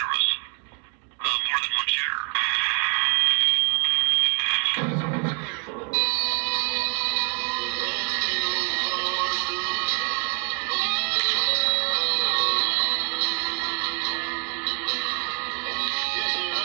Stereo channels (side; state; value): left; quieter; 38.3 dB